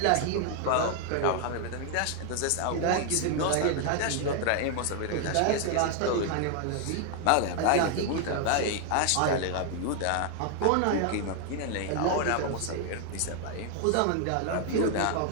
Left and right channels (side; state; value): both; different; correlation 0.00